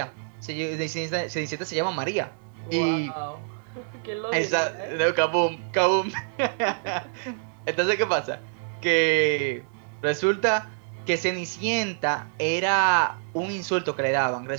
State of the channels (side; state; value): left; silent; digital silence